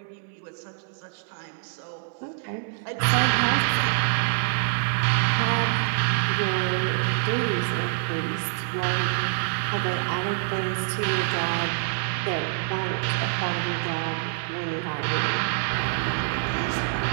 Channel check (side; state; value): left; silent; 60 dB below the other